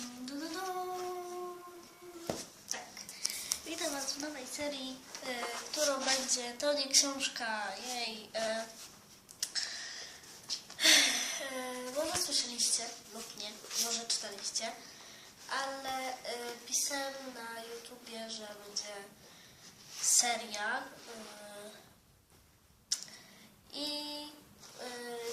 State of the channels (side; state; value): both; identical; correlation 1.00